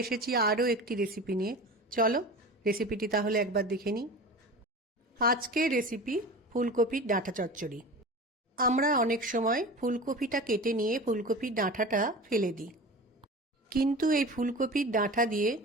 এসেছি আরও একটি রেসিপি নিয়ে। চলো রেসিপিটি তাহলে একবার দেখে নিই। আজকের রেসিপি ফুলকপির ডাঁটা চচ্চড়ি। আমরা অনেক সময় ফুলকপিটা কেটে নিয়ে ফুলকপির ডাঁটাটা ফেলে দিই, কিন্তু এই ফুলকপির ডাঁটা দিয়ে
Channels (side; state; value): both; normal; correlation 0.34